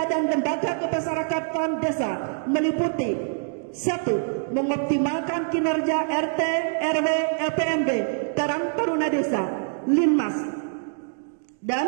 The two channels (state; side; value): silent; left; digital silence